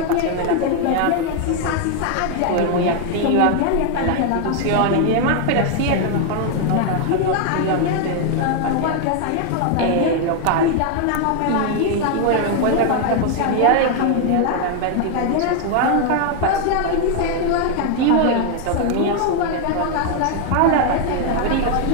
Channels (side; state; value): both; different; correlation 0.00